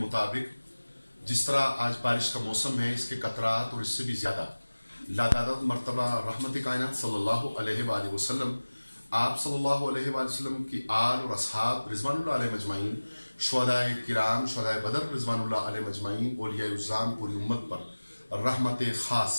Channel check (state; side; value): inverted; both; correlation -1.00